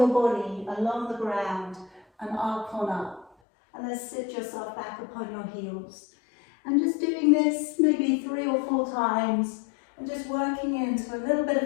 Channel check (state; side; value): drops out; right; at 3.3 s